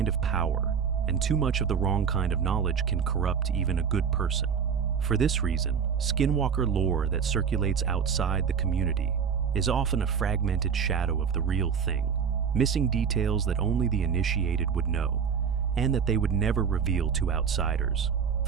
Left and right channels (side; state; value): left; quieter; 6.9 dB